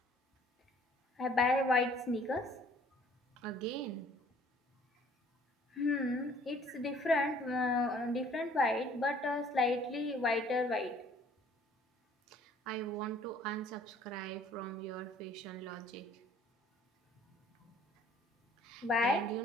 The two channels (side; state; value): both; normal; correlation 0.57